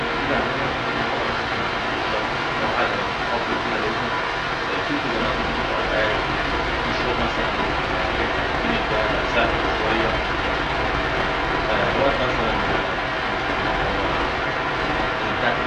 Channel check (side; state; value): both; identical; correlation 1.00